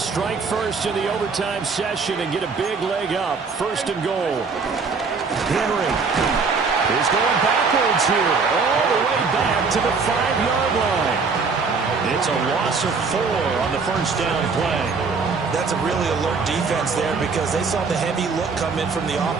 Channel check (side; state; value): left; quieter; 4.8 dB